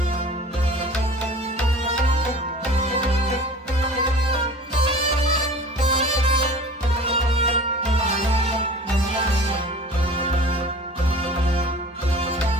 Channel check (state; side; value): normal; both; correlation 0.42